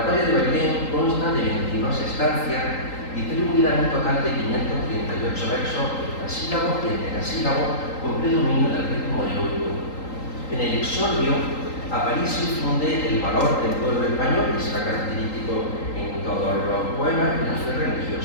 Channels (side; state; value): right; late; 3.8 ms